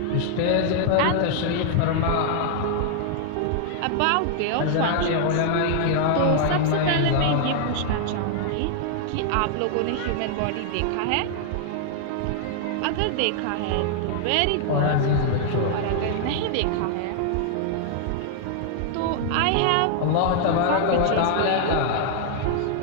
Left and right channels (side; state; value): both; different; correlation -0.01